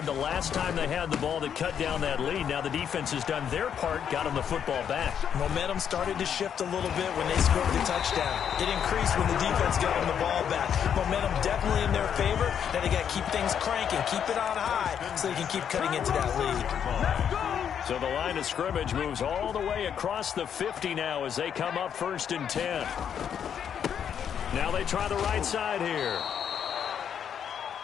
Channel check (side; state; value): right; quieter; 8.4 dB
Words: the last time they had the ball that cut down that lead. Now the defense has done their part, got them the football back. Momentum started to shift a little bit when they scored the touchdown. It increased when the defense got them the ball back. Momentum definitely in their favor. Now they got to keep things cranking, keep it on high so they can keep cutting into that lead. So the line of scrimmage moves all the way across the 50 now as they come up 1st and 10. Now they try the right side here.